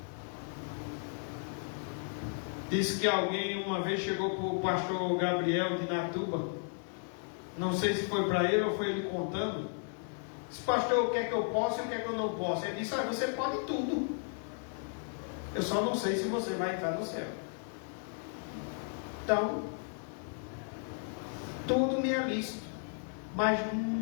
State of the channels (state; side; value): silent; right; 55 dB below the other